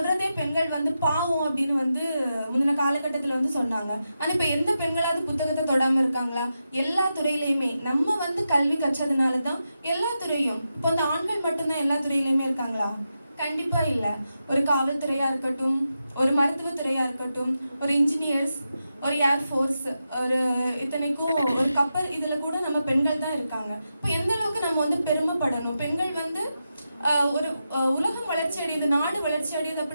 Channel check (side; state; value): both; inverted; correlation -0.89